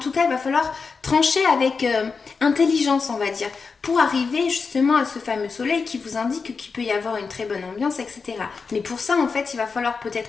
cas, il va falloir trancher avec intelligence, on va dire, pour arriver justement à ce fameux soleil qui vous indique qu'il peut y avoir une très bonne ambiance, etc. Mais pour ça, en fait, il va falloir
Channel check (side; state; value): right; quieter; 4.9 dB